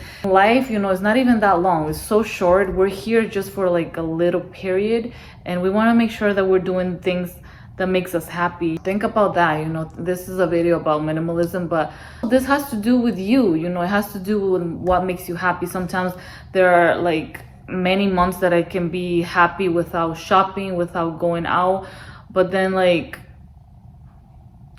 life, is not even that long. It's so short. We're here just for like a little period, and we want to make sure that we're doing things that makes us happy. Think about that. This is a video about minimalism, but this has to do with you. It has to do with what makes you happy. Sometimes there are like many months that I can be happy without shopping, without going out, but then like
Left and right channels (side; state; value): both; identical; correlation 1.00